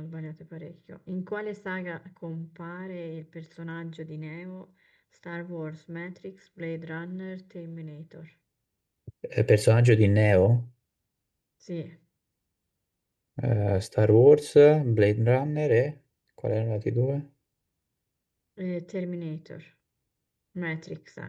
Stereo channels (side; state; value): both; identical; correlation 1.00